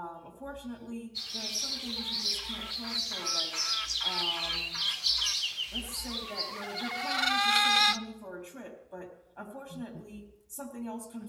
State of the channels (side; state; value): both; identical; correlation 1.00